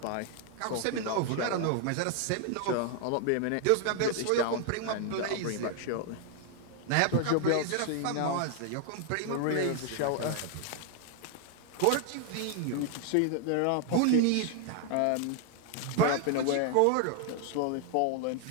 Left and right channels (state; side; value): different; both; correlation 0.00